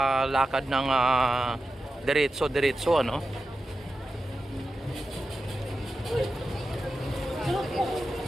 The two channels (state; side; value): normal; both; correlation 0.91